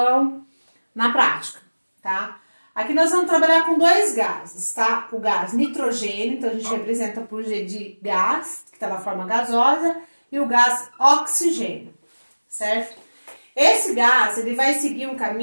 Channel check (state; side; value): inverted; both; correlation -1.00